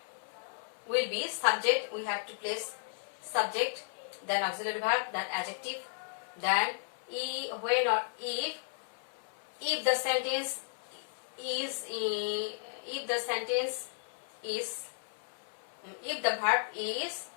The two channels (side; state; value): right; silent; 55 dB below the other